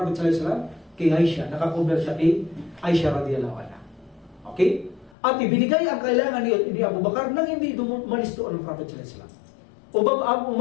sallallahu alaihi wasallam? Kay Aisha, nakakover siya kay Aisha radiyallahu anha. Okay? At ibinigay ang kailangan ni Abu Bakar nang hindi dumalis doon ang Prophet sallallahu alaihi wasallam. Abu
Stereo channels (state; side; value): drops out; right; at 5.2 s